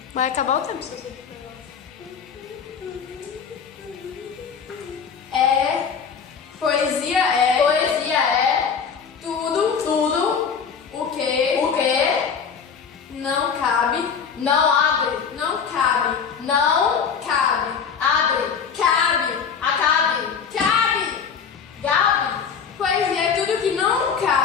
Vai acabar o tempo se você Poesia é Poesia é tudo o que não cabe, não abre, não cabe, não cabe, abre, cabe, acabe, cabe, gabe,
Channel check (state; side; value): quieter; right; 6.5 dB